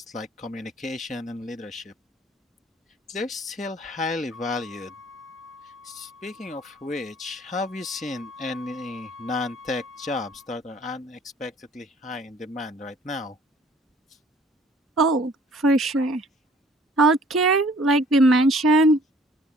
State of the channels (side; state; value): both; normal; correlation 0.55